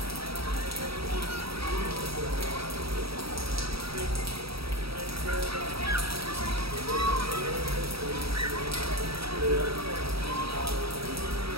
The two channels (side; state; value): left; late; 0.76 ms